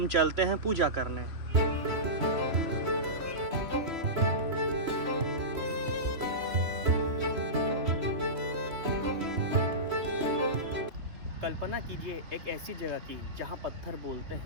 चलते हैं पूजा करने। कल्पना कीजिए एक ऐसी जगह की जहां पत्थर बोलते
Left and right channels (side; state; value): left; late; 3.1 ms